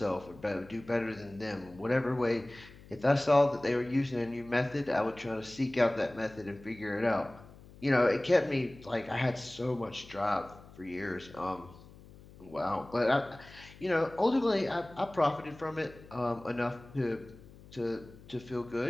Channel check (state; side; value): noise; left; hum, 21 dB below the sound